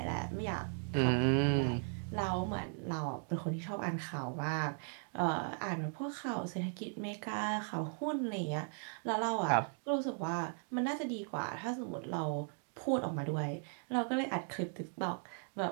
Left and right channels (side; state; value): left; silent; 53 dB below the other